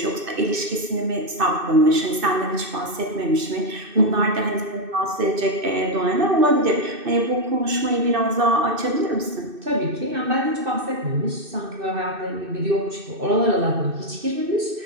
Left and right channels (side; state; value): left; late; 2.6 ms